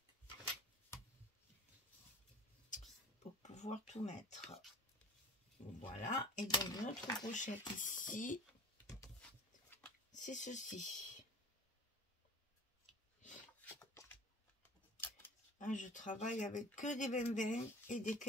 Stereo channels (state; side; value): normal; both; correlation 0.42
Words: pour pouvoir tout mettre. Voilà. Et donc notre pochette ici, c'est ceci. Hein, je travaille avec que des 20-20 et des